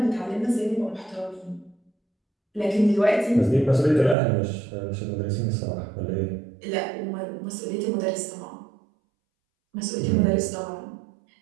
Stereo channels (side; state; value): left; drops out; at 4.2 s